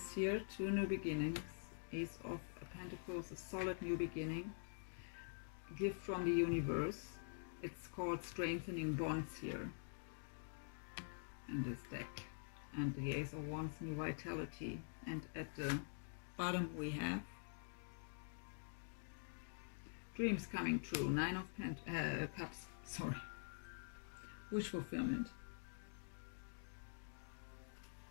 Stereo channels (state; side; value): silent; right; digital silence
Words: here, two new beginnings. Ace of Pentacles, a solid new beginning. Gift from the universe. It's called strengthening bonds here in this deck. And the Ace of Wands, new vitality. And at the bottom we have dreams coming true. Nine of Cups. Sorry. Wish fulfillment.